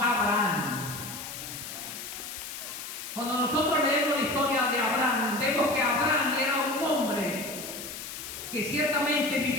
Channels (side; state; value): left; noise; hiss, 9 dB below the sound